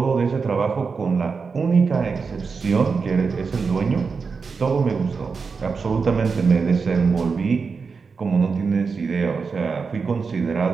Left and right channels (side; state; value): left; quieter; 5.0 dB